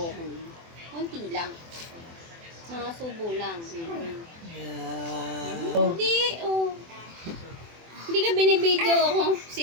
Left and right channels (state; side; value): late; left; 24 ms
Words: ko. Konti lang. Mga subo lang. Yeah. Hindi, oh. Hindi ka binibidyo ako. Si